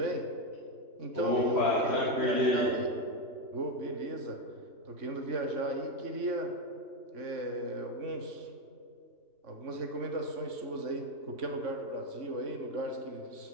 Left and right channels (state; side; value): late; left; 3.5 ms